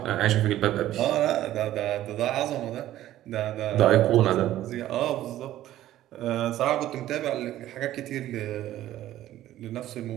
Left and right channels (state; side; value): quieter; left; 13.7 dB